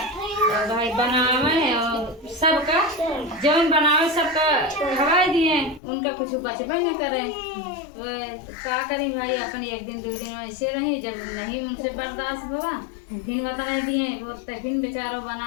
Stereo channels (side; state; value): right; drops out; at 5.8 s